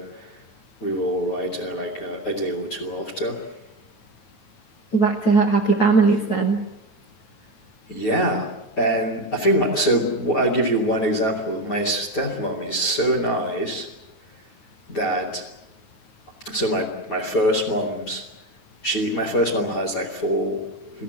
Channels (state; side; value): late; right; 9.3 ms